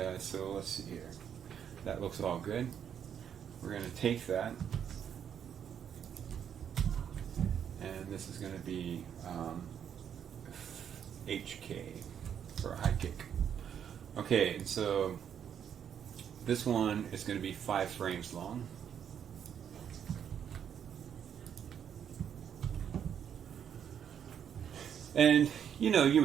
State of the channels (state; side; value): quieter; left; 8.5 dB